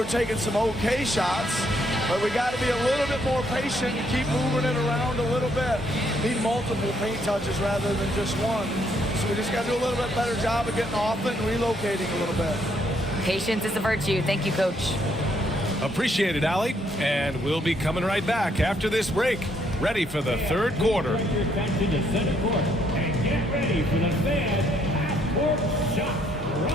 taking some okay shots, but we got to be a little bit more patient and keep moving it around a little bit. Need multiple paint touches rather than just one. So we just got to do a little bit better job of getting off it and relocating a little bit. Patience is a virtue. Thank you, Coach. Appreciate it, Allie. And we'll be coming right back after this break. Ready for the third quarter. Back to the center court and get ready for the Fed half-court shot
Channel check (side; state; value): both; normal; correlation 0.71